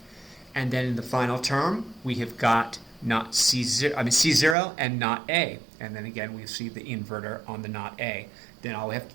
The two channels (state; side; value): drops out; left; at 4.5 s